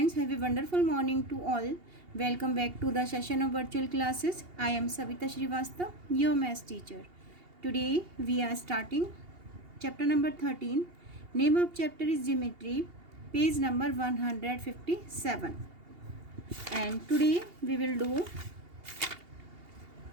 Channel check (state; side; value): late; left; 2.8 ms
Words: have a wonderful morning to all. Welcome back to the session of virtual classes. I am Savita Srivastav, your maths teacher. Today we are starting chapter number 13. Name of chapter is Geometry, page number 157. And today we will do